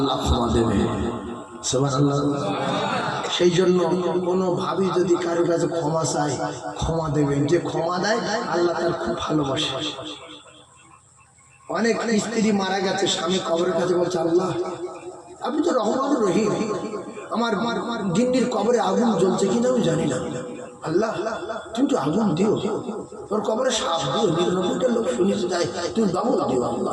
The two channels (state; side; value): identical; both; correlation 1.00